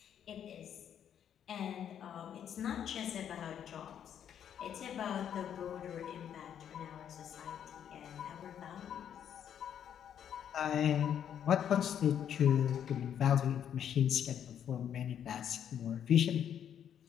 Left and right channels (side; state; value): right; quieter; 9.3 dB